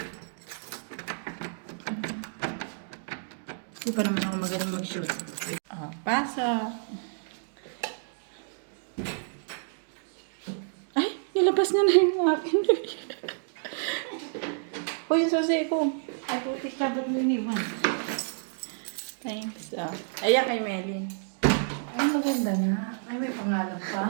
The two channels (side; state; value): left; silent; digital silence